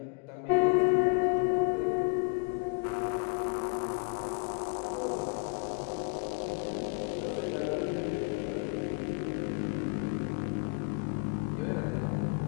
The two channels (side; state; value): right; quieter; 34.1 dB